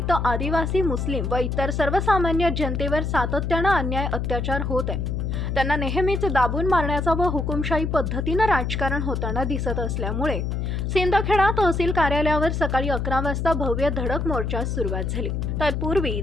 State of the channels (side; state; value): left; noise; hum, 1 dB below the sound